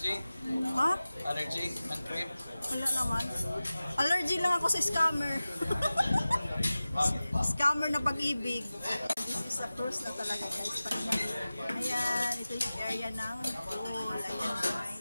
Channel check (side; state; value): both; inverted; correlation -0.96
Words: Ha? Allergy? Ang cream? Wala naman. Allergy lang ako sa scammer. Scammer na pag-ibig. This is a cruise na talaga guys. Ayan, ito yung area ng pool. Ayan